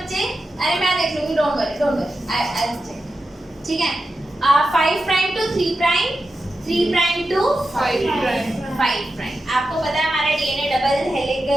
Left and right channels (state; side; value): normal; both; correlation 0.90